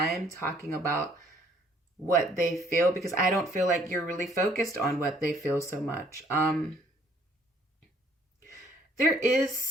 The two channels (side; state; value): both; normal; correlation 0.62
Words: talking about what they feel, because I don't feel like you're really focused on what they feel so much. There is